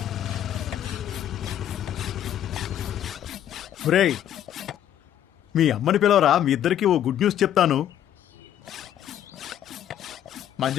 ఒరేయ్ మీ అమ్మని పిలవరా, మీ ఇద్దరికి ఓ గుడ్ న్యూస్ చెప్తాను.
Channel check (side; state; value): right; quieter; 10.9 dB